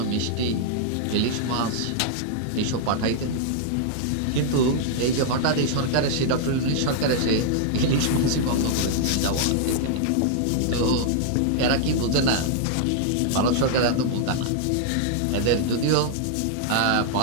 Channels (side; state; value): both; different; correlation -0.01